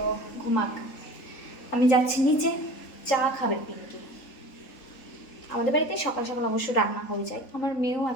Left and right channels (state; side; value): late; right; 3.8 ms